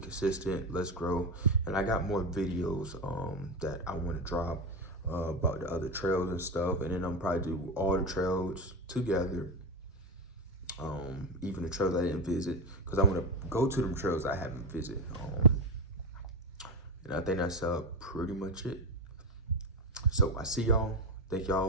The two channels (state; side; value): normal; both; correlation 0.14